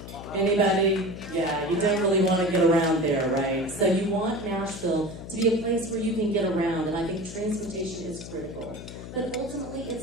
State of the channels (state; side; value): noise; left; hum, 12 dB below the sound